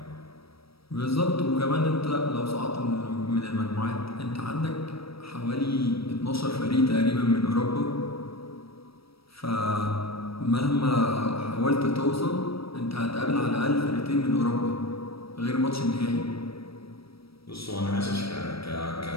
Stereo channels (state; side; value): late; right; 0.76 ms